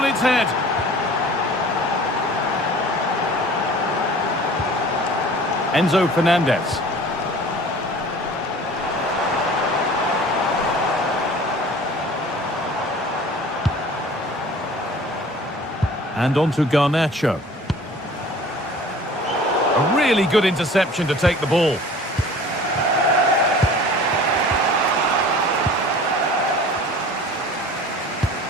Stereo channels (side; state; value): both; normal; correlation 0.45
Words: its head. Enzo Fernandez. And on to Garnacho. A really good interception to take the ball.